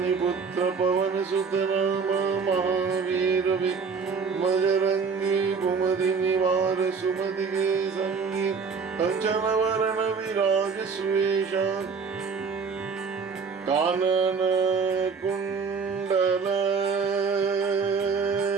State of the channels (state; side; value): quieter; left; 5.4 dB